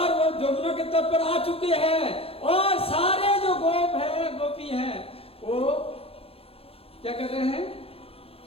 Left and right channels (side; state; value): right; late; 0.28 ms